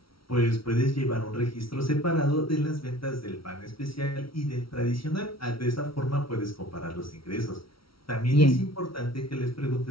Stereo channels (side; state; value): right; late; 0.75 ms